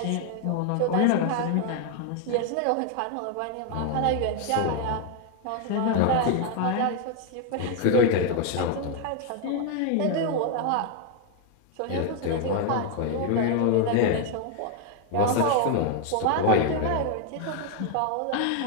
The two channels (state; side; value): different; both; correlation 0.01